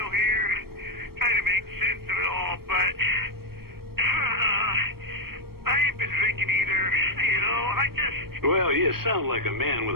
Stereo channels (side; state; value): left; late; 0.94 ms